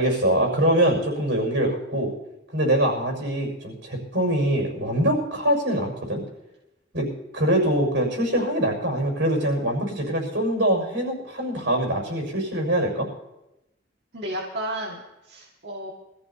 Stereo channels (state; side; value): normal; both; correlation 0.01